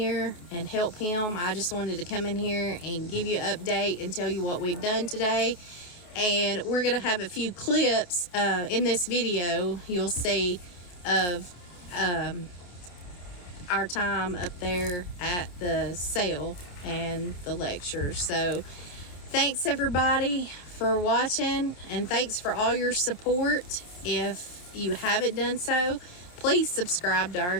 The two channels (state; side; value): late; right; 28 ms